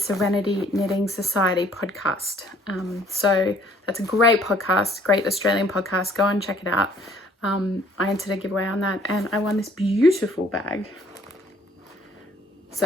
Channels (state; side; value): normal; both; correlation 0.59